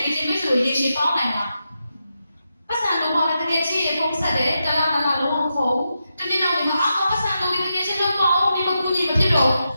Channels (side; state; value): both; inverted; correlation -0.87